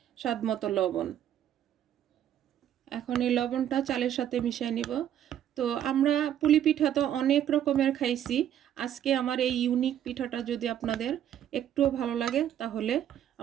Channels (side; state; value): left; quieter; 10.5 dB